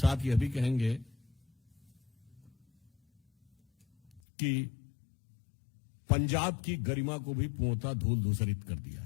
यह भी कहेंगे कि पंजाब की गरिमा को भी पूर्णतः धूल धूसरित कर दिया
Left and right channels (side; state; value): right; drops out; at 4.2 s